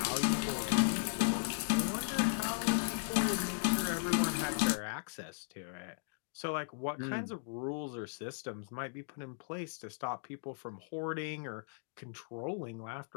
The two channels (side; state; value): right; silent; digital silence